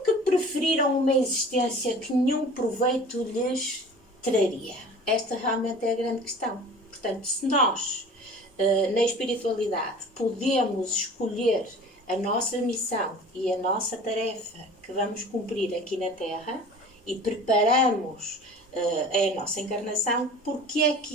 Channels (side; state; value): both; normal; correlation 0.42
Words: preferiram uma existência que nenhum proveito lhes traria? Esta realmente é a grande questão. Portanto, se nós, na espiritualidade, podemos escolher a nossa missão e a nossa tarefa que vamos cumprir aqui na Terra e preparamos a nossa encarnação, porque é